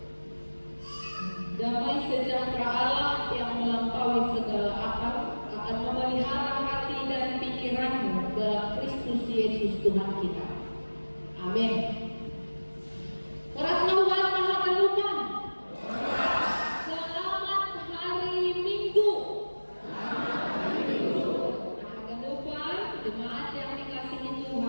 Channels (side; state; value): both; inverted; correlation -1.00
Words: Damai sejahtera Allah yang melampaui segala akal akan memelihara hati dan pikiranmu dalam Kristus Yesus Tuhan kita. Amin. Orang Tuhan Maha Penuhan. Selamat hari Minggu. Jemaat yang dikasihi